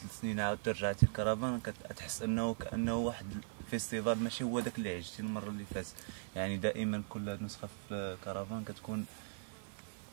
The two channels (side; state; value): left; silent; 52 dB below the other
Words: سنين عاود رجعتي الكرفان كتحس أنه كأنه واحد الفيستيفال ماشي هو داك اللي عشتي المرة اللي فاتت. يعني دائما كل نسخة في الكرفان كتكون